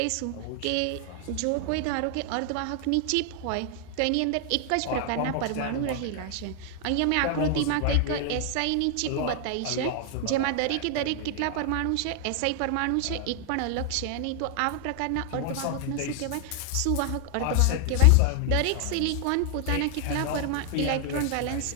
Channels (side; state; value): both; different; correlation 0.00